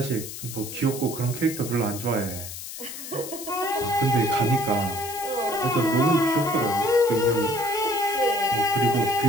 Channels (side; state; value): left; noise; hiss, 10 dB below the sound